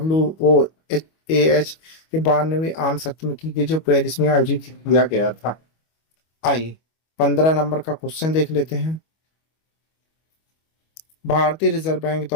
के 92वें आम सत्र में की गई जो पेरिस में आयोजित किया गया था। आइए 15 नंबर का क्वेश्चन देख लेते हैं। भारतीय रिजर्व बैंक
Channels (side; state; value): right; late; 25 ms